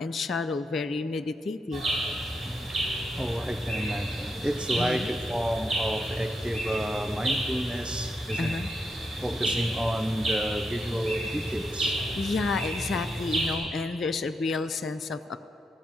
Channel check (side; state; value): both; normal; correlation 0.83